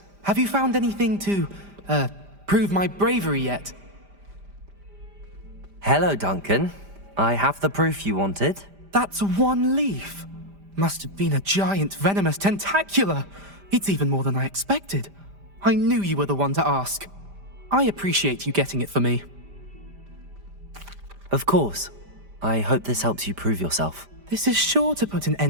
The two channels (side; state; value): left; late; 5.0 ms